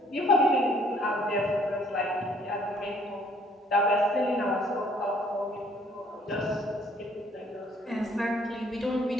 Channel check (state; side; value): normal; both; correlation 0.61